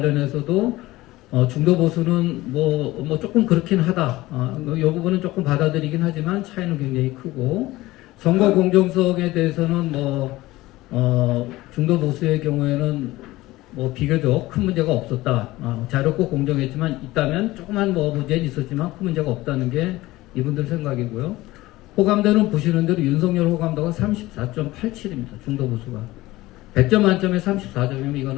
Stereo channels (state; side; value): quieter; right; 18.3 dB